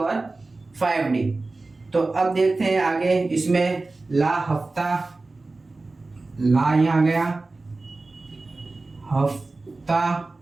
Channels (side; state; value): left; quieter; 3.4 dB